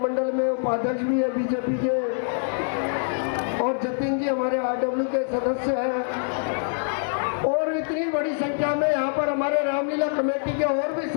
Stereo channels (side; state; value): right; silent; digital silence